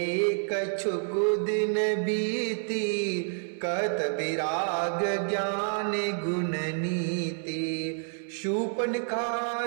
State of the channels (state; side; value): silent; left; 59 dB below the other